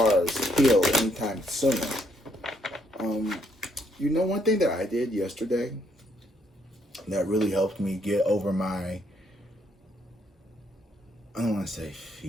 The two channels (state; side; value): normal; both; correlation 0.71